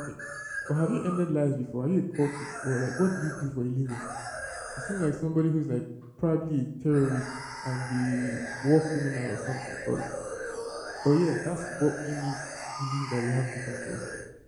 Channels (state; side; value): identical; both; correlation 1.00